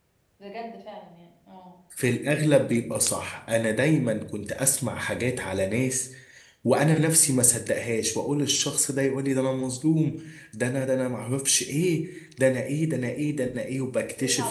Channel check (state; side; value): identical; both; correlation 1.00